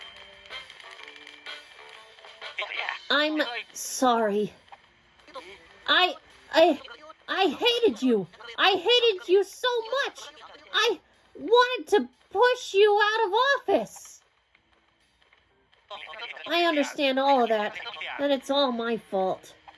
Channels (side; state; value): both; identical; correlation 1.00